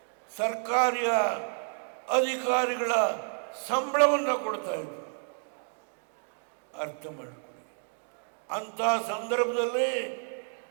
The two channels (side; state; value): left; silent; 58 dB below the other